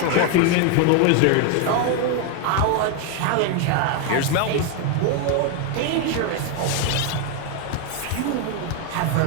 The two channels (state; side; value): different; both; correlation 0.01